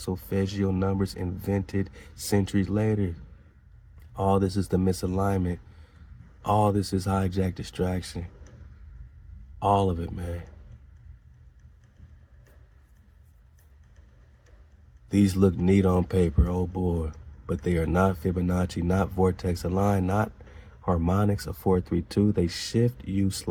solfeggio numbers invented centuries later. All this is the misalignment. All this is hijack distraction. All of it, man. These look neat on paper, oh boy, but they are not Fibonacci, not vortex aligned, not harmonics of 432. They shift you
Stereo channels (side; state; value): both; identical; correlation 1.00